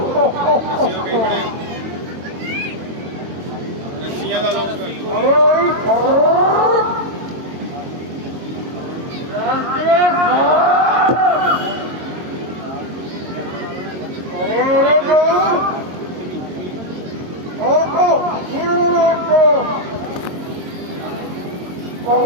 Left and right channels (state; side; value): late; left; 22 ms